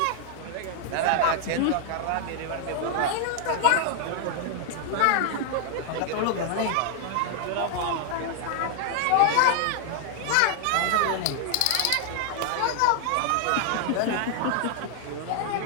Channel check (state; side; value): different; both; correlation 0.00